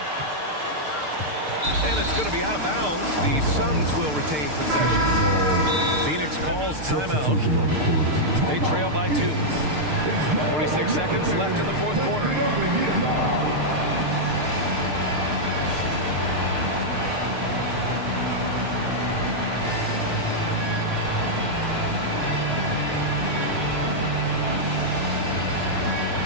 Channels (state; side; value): late; left; 6.6 ms